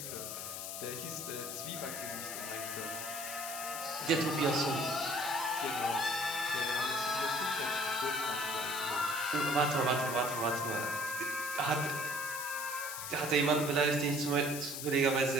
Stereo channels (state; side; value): noise; left; hiss, 6 dB below the sound